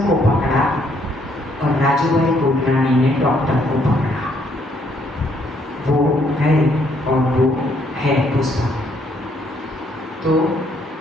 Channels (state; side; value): normal; both; correlation 0.69